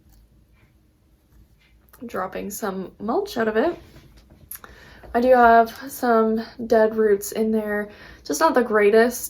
dropping some mulch out of it. I do have some dead roots in there, just not the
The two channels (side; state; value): both; identical; correlation 1.00